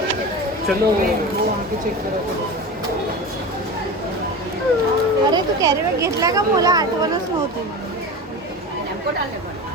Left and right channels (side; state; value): both; normal; correlation 0.28